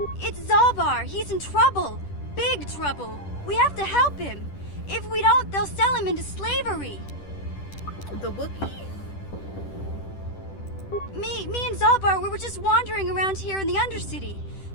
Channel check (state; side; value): late; right; 10 ms